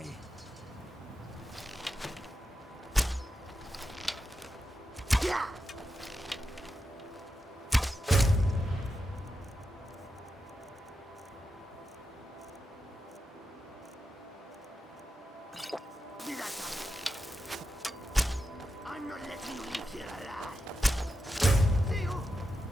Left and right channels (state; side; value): normal; both; correlation 0.88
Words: I'm not letting you leave here alive. See you.